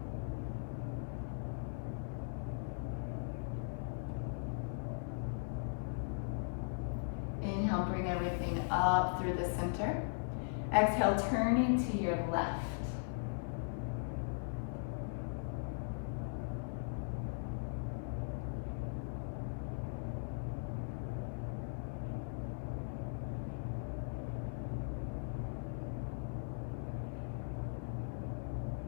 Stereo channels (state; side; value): silent; right; 52 dB below the other